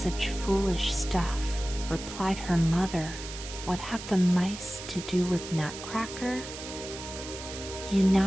foolish stuff," replied her mother. "What have the mice to do with Nutcracker?" "You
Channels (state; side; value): noise; right; hiss, 11 dB below the sound